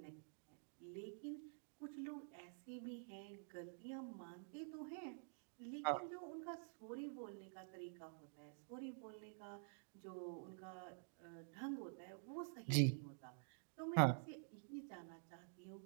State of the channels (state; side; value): silent; left; digital silence